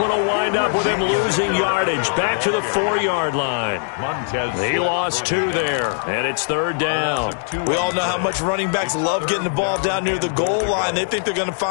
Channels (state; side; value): silent; right; 65 dB below the other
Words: will wind up with him losing yardage. Back to the 4-yard line. He lost 2 there. And it's 3rd down. We all know how much running backs love getting the ball down near the goal line. They think they're going to